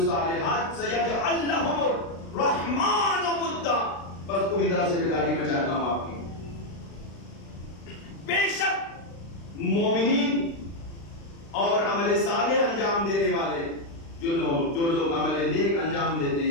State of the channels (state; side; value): late; right; 36 ms